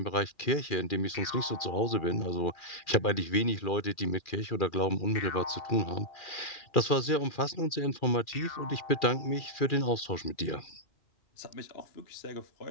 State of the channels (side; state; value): right; late; 2.4 ms